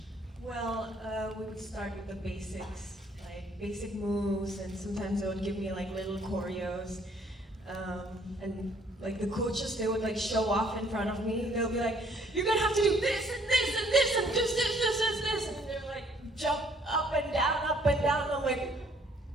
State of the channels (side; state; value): both; normal; correlation 0.62